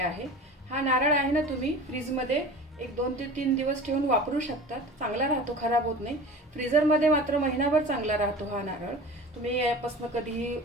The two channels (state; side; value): normal; both; correlation 0.37